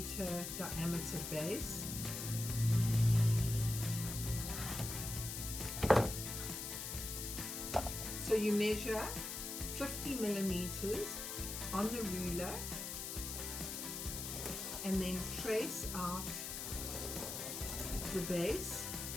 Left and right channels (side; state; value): left; noise; hiss, 5 dB below the sound